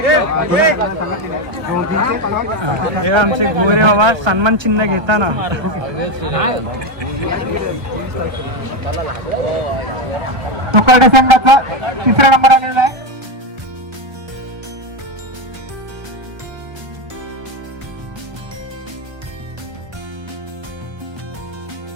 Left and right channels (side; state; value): left; late; 1.3 ms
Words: हे आमचे गोरे बाबा सन्मान चिन्ह घेताना तुकाडे संघाचा 3रा नंबर आलेला आहे.